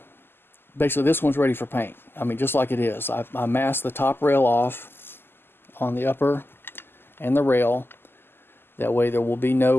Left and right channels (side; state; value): right; late; 0.11 ms